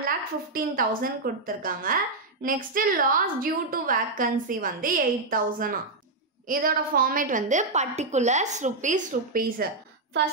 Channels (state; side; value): quieter; left; 3.3 dB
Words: கொடுத்துருக்காங்க. Next loss due to vacancy வந்து 8,000. இதோட ஃபார்மேட் வந்து பர்டிகுலர்ஸ் ருபீஸ்.